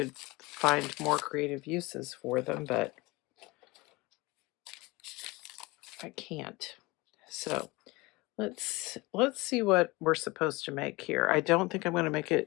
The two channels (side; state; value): right; quieter; 22.9 dB